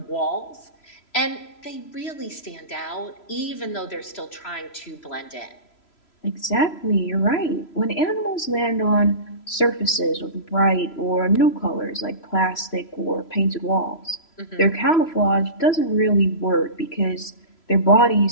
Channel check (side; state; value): right; late; 3.0 ms